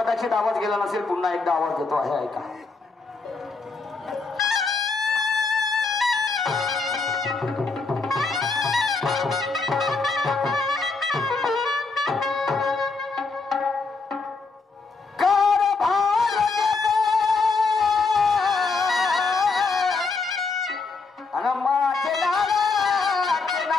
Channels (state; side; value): quieter; right; 4.1 dB